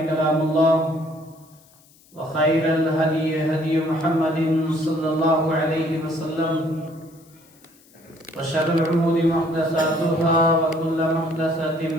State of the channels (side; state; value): left; noise; hiss, 29 dB below the sound